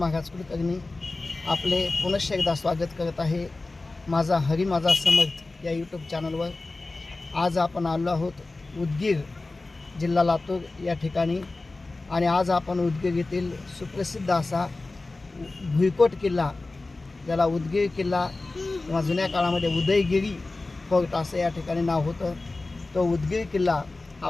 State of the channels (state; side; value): quieter; right; 3.3 dB